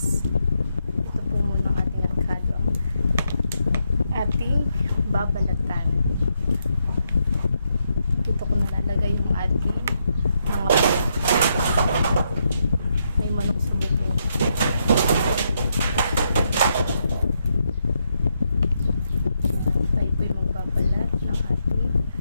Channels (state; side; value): inverted; both; correlation -0.80